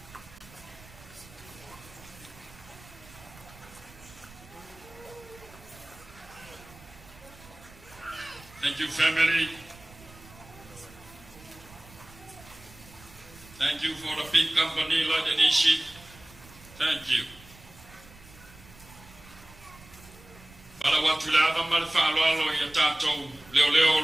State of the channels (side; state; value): right; noise; rumble, 21 dB below the sound